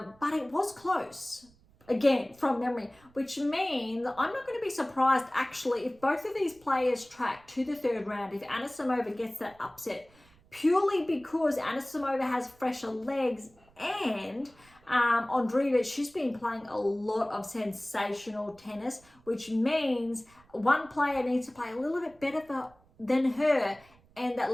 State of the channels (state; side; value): noise; right; rumble, 29 dB below the sound